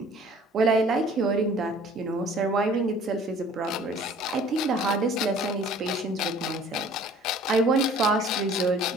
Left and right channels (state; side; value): normal; both; correlation 0.51